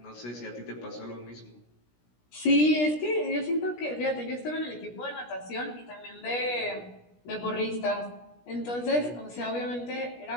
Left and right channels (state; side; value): late; right; 17 ms